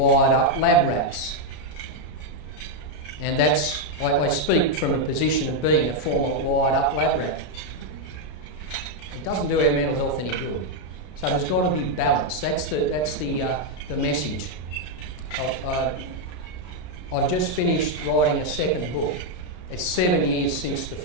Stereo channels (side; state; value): right; late; 33 ms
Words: up lab rats. And that's, I speak from a position of being a former wired up lab rat. It doesn't do our mental health any good. So there's got to be balance. That's the message. I've just finished writing a second book. It's 7 years since the